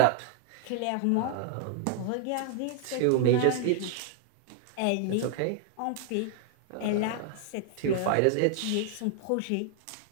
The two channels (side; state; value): both; different; correlation 0.00